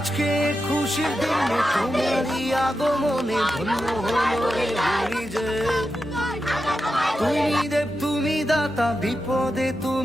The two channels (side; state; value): both; normal; correlation 0.89